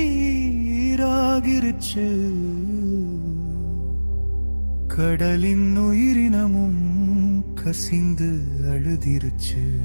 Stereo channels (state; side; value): inverted; both; correlation -1.00